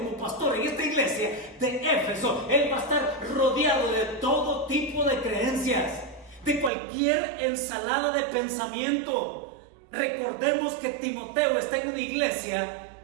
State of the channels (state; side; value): drops out; left; at 6.7 s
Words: pastor en esta iglesia de Éfeso, él va a estar rodeado de todo tipo de creencias, de cualquier ensalada de pensamiento. Recordemos que Timoteo está en una iglesia